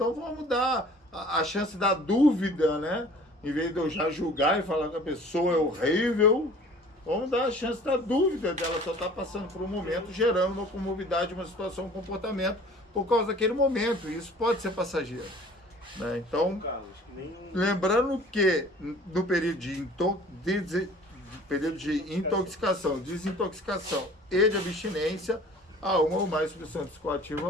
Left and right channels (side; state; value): both; normal; correlation 0.48